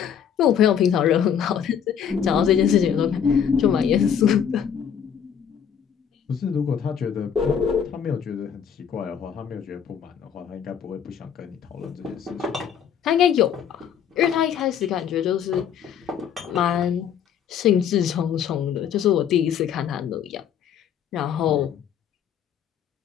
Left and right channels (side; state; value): right; quieter; 8.2 dB